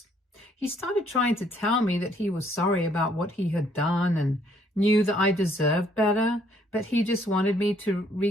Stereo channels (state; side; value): normal; both; correlation 0.66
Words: he started trying to tell me that he was sorry about what he had done and knew that I deserved better, but he just wanted me to